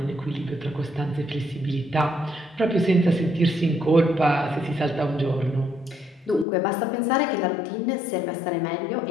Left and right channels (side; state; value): right; drops out; at 6.5 s